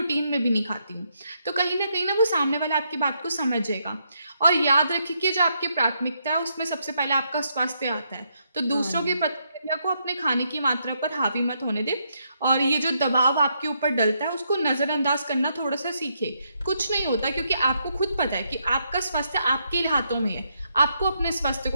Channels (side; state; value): both; inverted; correlation -0.78